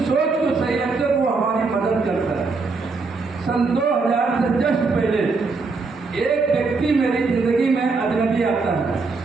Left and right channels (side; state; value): left; quieter; 4.2 dB